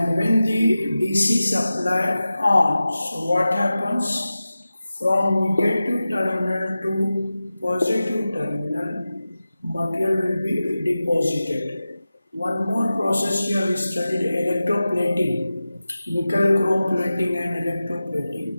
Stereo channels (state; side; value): inverted; both; correlation -0.95